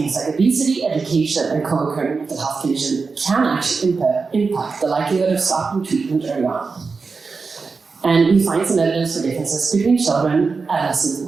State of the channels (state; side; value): quieter; left; 4.6 dB